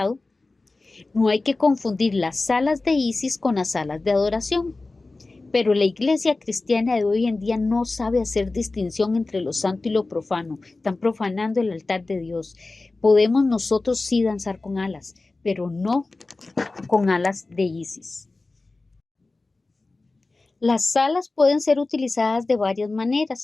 No hay que confundir las alas de Isis con las alas de adoración. Pero la iglesia cristiana de hoy en día no sabe hacer distinción entre lo santo y lo profano. Están profanando el altar de Dios. Podemos nosotros sí danzar con alas, pero no con alas de Isis. Las alas pueden ser utilizadas de varias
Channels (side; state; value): right; quieter; 3.4 dB